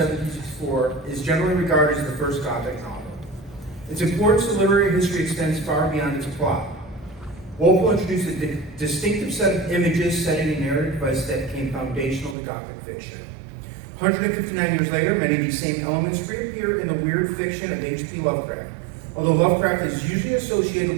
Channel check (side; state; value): left; drops out; at 12.4 s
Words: is generally regarded as the first Gothic novel. Its importance to literary history extends far beyond its plot. Walpole introduced a distinctive set of images, setting, and narrative device that became foundational to Gothic fiction. 159 years later, many of these same elements reappear in the weird fiction of H.P. Lovecraft, although Lovecraft is usually